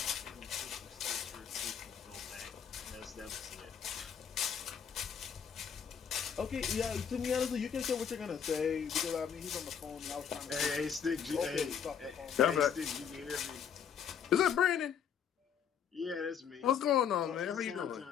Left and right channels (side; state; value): right; quieter; 7.8 dB